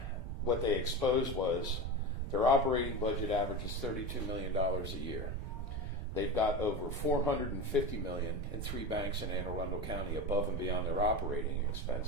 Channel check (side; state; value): right; noise; rumble, 6 dB below the sound